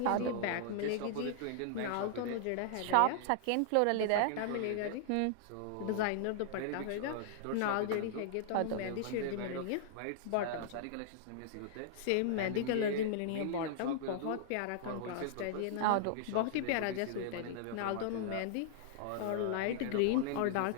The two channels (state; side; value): different; both; correlation -0.01